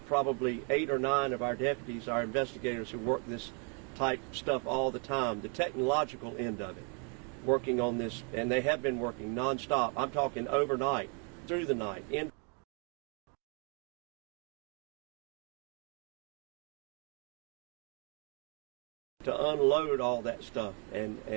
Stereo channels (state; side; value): quieter; left; 37.5 dB